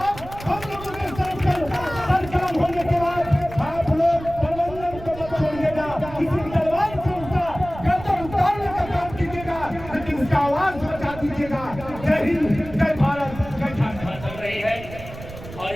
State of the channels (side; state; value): right; noise; rumble, 14 dB below the sound